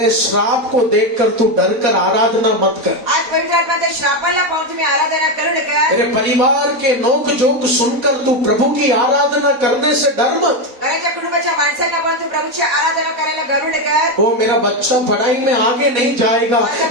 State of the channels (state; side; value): late; left; 4.1 ms